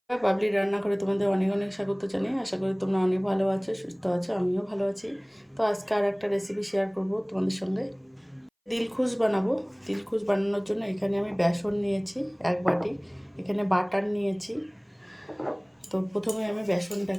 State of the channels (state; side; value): identical; both; correlation 1.00